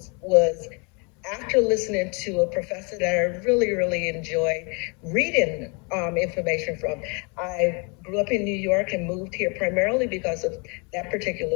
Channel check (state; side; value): quieter; right; 32.9 dB